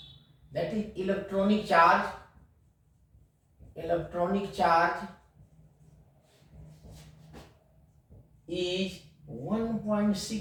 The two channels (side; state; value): both; identical; correlation 1.00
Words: that is electronic charge is